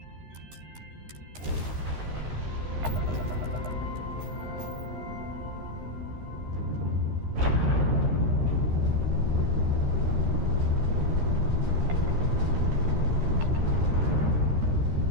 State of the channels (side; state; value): left; late; 13 ms